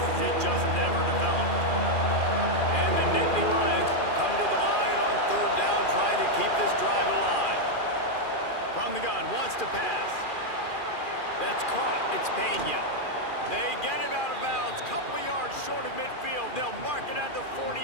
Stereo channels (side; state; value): right; late; 2.4 ms